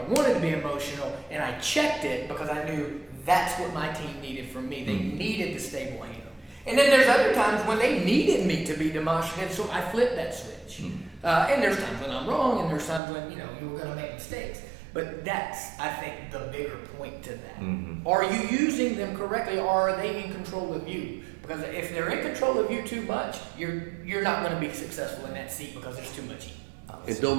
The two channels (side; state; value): left; drops out; at 13.0 s